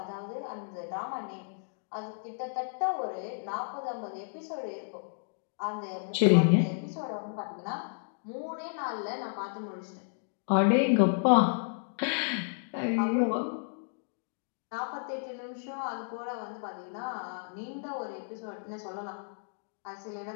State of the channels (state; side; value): silent; right; digital silence